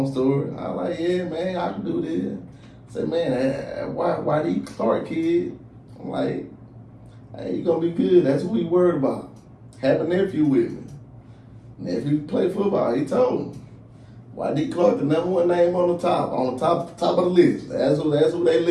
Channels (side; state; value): both; identical; correlation 1.00